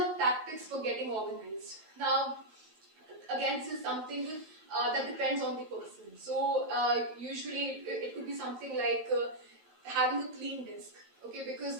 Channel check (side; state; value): left; late; 9.7 ms